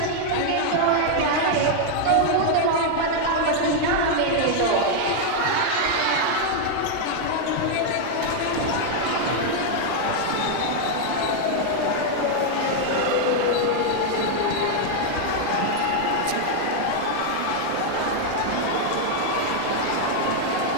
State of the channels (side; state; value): both; different; correlation 0.00